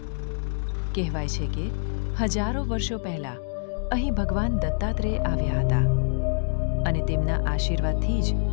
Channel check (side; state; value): right; silent; digital silence